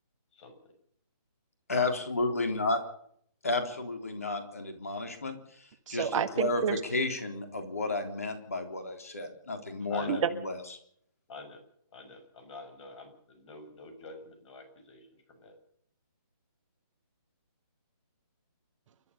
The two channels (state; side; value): inverted; both; correlation -0.38